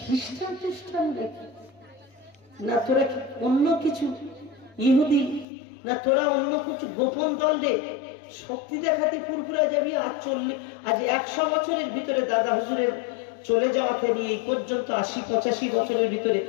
খ্রিস্টান না তোরা কি অন্য কিছু ইহুদি, না তোরা অন্য কিছু গোপন দল রে? শক্তি দেখাতে ফুরফুরায় যাবি? আজ 100 বছরের ভিতরে দাদা হুজুরের চলে যাওয়াতে নিয়ে এই পর্যন্ত 80-85 বছরের ভিতরে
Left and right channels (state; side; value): drops out; right; at 5.5 s